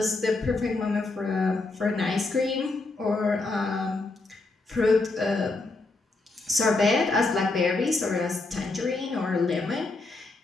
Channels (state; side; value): quieter; right; 3.3 dB